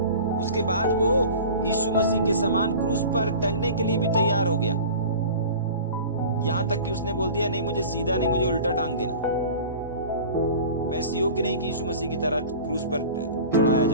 उसके बाद वो यीशु मसीह के समान क्रूस पर टंगने के लिए भी तैयार हो गया। यहां तक कि उसने बोल दिया, नहीं मुझे सीधा नहीं, मुझे उल्टा टांग देना, मैं इस योग्य नहीं कि यीशु मसीह की तरह क्रूस पर चढ़ाया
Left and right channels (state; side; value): inverted; both; correlation -0.39